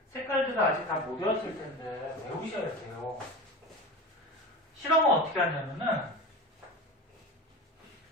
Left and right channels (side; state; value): both; normal; correlation 0.29